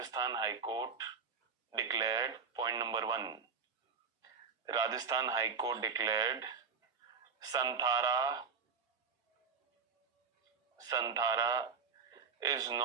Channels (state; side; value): quieter; left; 5.8 dB